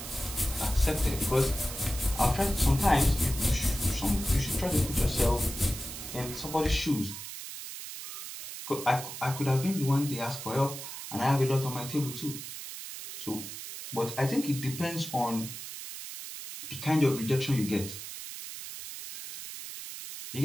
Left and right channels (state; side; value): noise; right; hiss, 9 dB below the sound